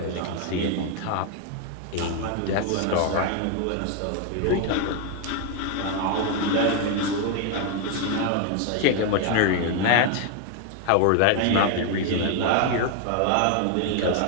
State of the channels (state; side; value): different; both; correlation 0.01